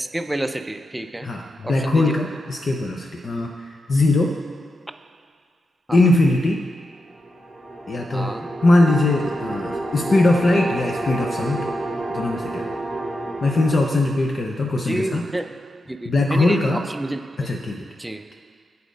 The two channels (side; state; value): both; normal; correlation 0.88